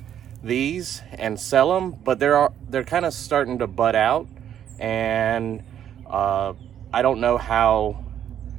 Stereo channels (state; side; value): quieter; left; 9.9 dB